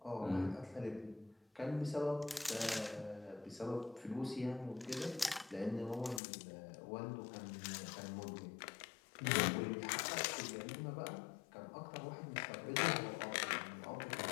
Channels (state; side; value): drops out; right; at 6.2 s